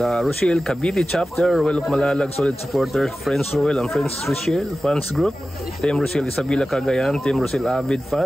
Cavite Chapter, Roel of Malalag, Solid Supporter, Friends Roel and Friends Rochelle Fans Group, Team Rochelle Isabela Cagayan, Team Rochelle Avid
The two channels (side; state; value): both; normal; correlation 0.95